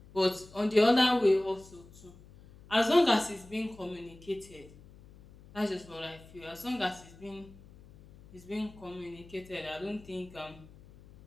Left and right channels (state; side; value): noise; left; hum, 22 dB below the sound